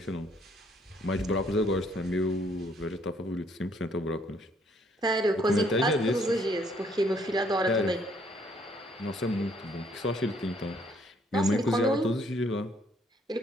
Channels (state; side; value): normal; both; correlation 0.66